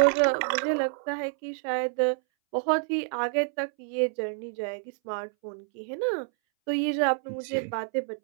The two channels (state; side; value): silent; left; 59 dB below the other